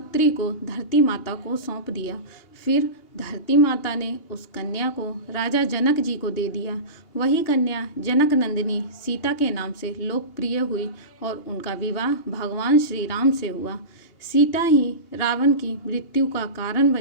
को धरती माता को सौंप दिया। फिर धरती माता ने उस कन्या को राजा जनक जी को दे दिया। वही कन्या जनक नंदिनी सीता के नाम से लोकप्रिय हुई और उनका विवाह भगवान श्री राम से हुआ। सीता ही रावण की मृत्यु का कारण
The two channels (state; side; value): late; right; 2.8 ms